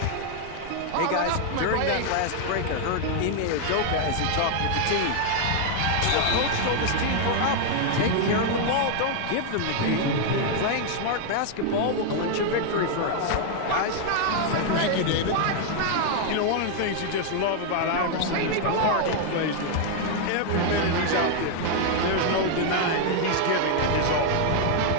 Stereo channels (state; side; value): different; both; correlation 0.00